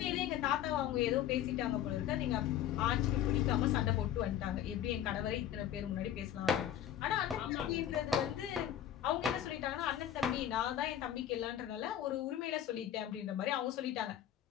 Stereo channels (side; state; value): right; quieter; 10.7 dB